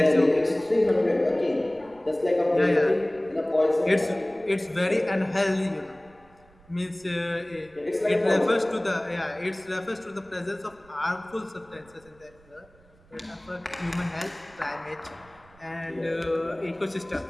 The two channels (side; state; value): right; noise; rumble, 28 dB below the sound